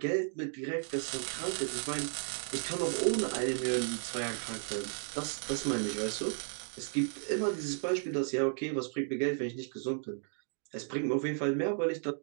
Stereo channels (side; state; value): left; silent; 55 dB below the other